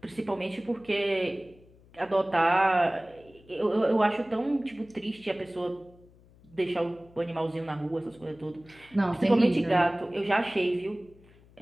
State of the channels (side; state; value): left; noise; hum, 27 dB below the sound